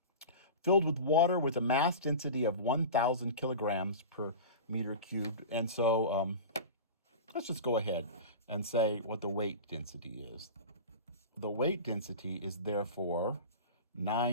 filled with water with a mass density of 1,000 kilograms per meter cubed. And so let's just go ahead and say what the weight density is. The weight density is therefore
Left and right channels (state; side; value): inverted; both; correlation -0.30